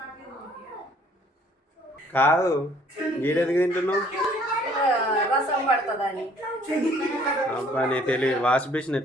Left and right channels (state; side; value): normal; both; correlation 0.59